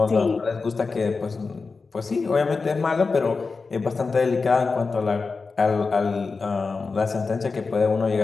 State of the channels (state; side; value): quieter; right; 4.4 dB